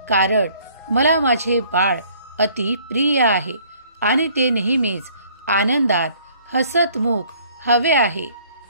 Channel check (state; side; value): inverted; both; correlation -0.58